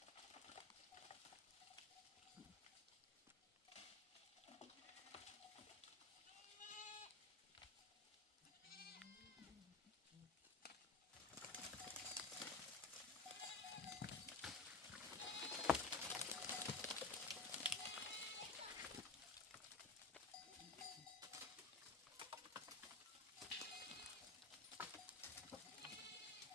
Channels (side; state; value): right; quieter; 3.9 dB